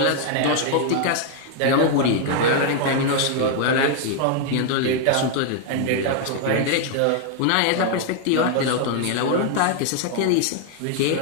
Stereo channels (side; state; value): both; different; correlation 0.00